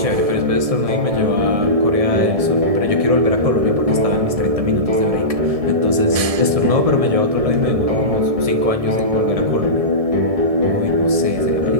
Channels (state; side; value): late; left; 1.7 ms